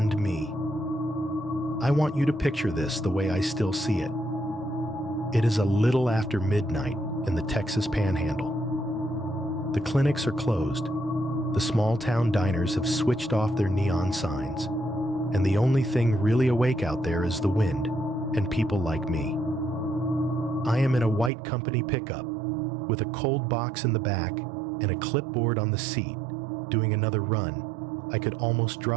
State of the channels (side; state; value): left; drops out; at 21.3 s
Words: me. I want you to picture this the way I still see it. It is a little after midnight in the Texas Panhandle. The clinics are closed. The small-town diners have switched off their neon signs. And the only thing really awake out there is the wind and people like me. I am in a white company pickup with a cold box in the back and a clipboard on the seat, doing another run. I could almost